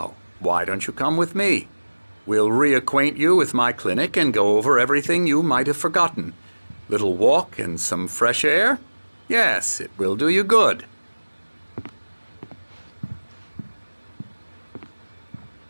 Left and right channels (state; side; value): inverted; both; correlation -1.00